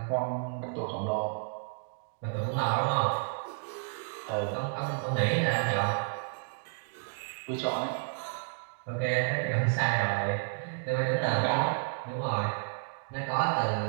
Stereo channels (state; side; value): silent; left; digital silence